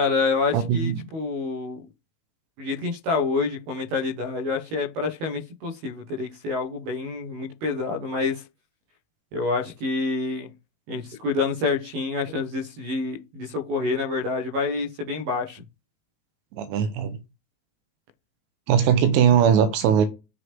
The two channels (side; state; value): left; late; 19 ms